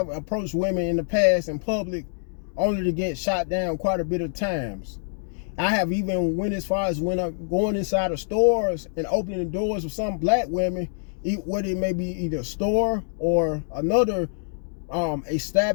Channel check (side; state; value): right; silent; digital silence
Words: approached women in the past in public only to get shot down quite a bit of times. I have even went as far as going inside of stores and opening the doors of some black women, whether it may be either a store or another